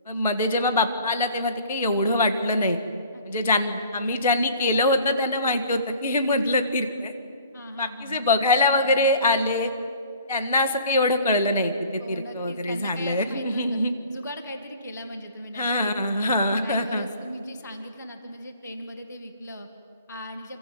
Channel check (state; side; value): inverted; both; correlation -0.50